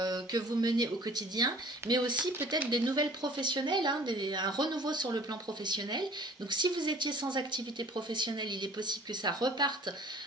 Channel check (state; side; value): normal; both; correlation 0.49